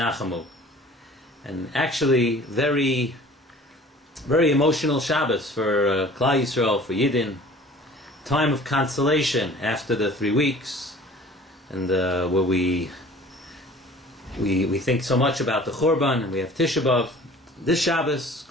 And actually, very emotional Shabbos for Klal Yisrael, for Yidden. Time of consolation after the 3 weeks, and where we think so much about the Churban, and we have Tisha B'Av. This Shabbos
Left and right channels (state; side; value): normal; both; correlation 0.47